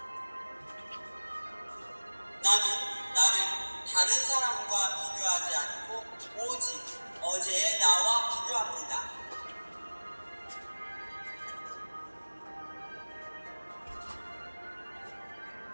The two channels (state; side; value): inverted; both; correlation -1.00